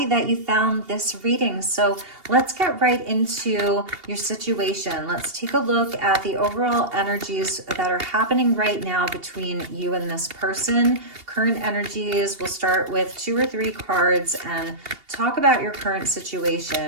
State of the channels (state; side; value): late; left; 2.8 ms